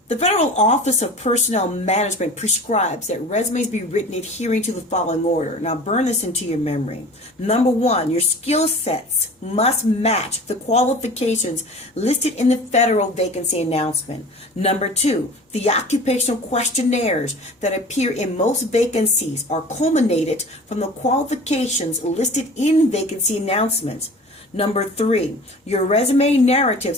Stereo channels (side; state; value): both; normal; correlation 0.41